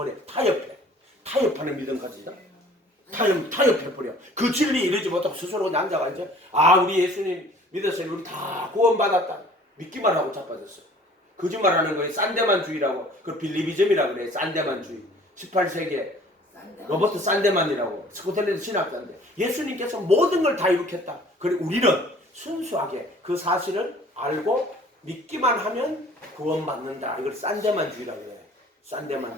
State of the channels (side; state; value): both; normal; correlation 0.51